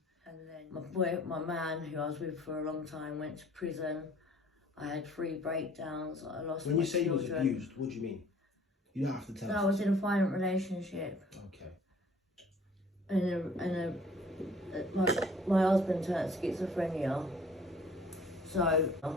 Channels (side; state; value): both; normal; correlation 0.53